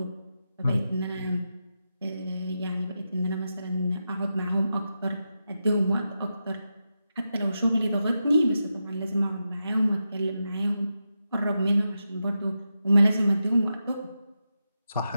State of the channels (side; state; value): both; inverted; correlation -0.88